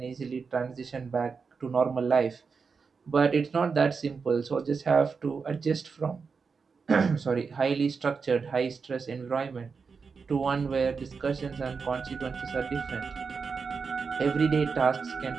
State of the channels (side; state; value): left; quieter; 5.2 dB